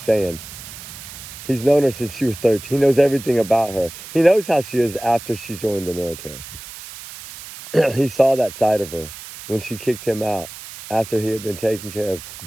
saying. He's known her since she was 13. He knows everything about her. He knows how she is after she joined the military. He saw that side of her when she kicked him out after he had been taking care of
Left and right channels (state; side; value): noise; right; hiss, 14 dB below the sound